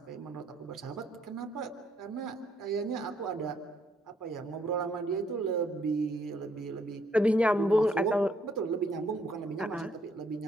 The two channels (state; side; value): normal; both; correlation 0.70